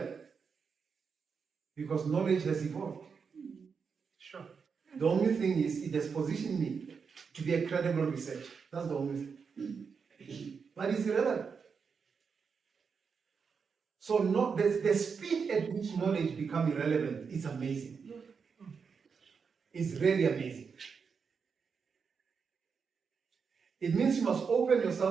because knowledge has evolved. Sure. The only thing is it has positioned me to be a credible researcher. That's the only thing. But it's irrelevant. So the speed at which knowledge becomes irrelevant is amazing. It's really amazing. It means you must open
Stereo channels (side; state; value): left; quieter; 5.8 dB